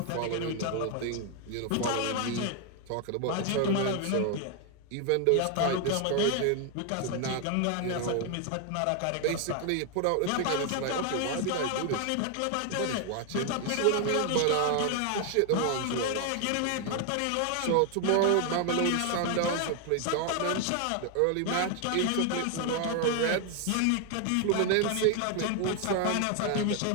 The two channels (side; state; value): both; different; correlation 0.01